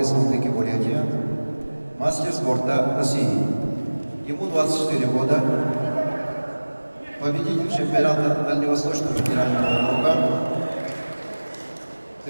Бурятия, мастер спорта России. Ему 24 года, победитель чемпионата Дальневосточного федерального округа,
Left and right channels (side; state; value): both; inverted; correlation -1.00